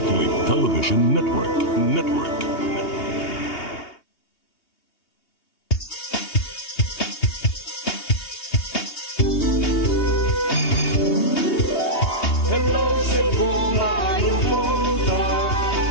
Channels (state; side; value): late; right; 2.8 ms